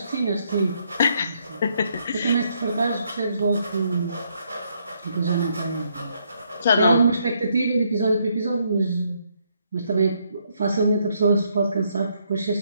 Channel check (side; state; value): both; inverted; correlation -0.73